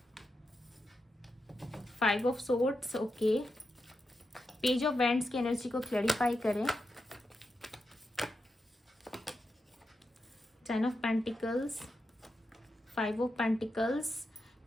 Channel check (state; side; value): normal; both; correlation 0.87